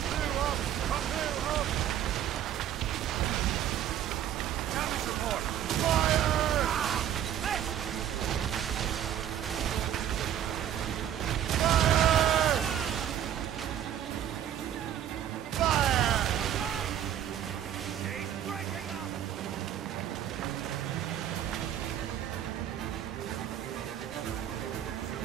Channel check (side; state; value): left; quieter; 10.4 dB